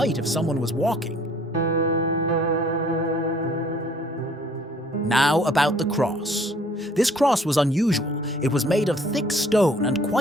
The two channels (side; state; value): both; normal; correlation 0.57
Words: if someone was walking. Now about the cross. This cross was unusual. It was made of thick stone and